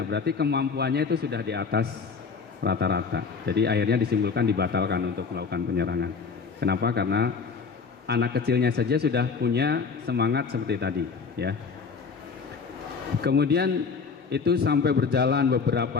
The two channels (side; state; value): right; quieter; 5.3 dB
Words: berarti kemampuannya itu sudah di atas rata-rata. Jadi akhirnya disimpulkan dibatalkan untuk melakukan penyerangan. Kenapa? Karena anak kecilnya saja sudah punya semangat seperti tadi ya. Kemudian itu sampai berjalan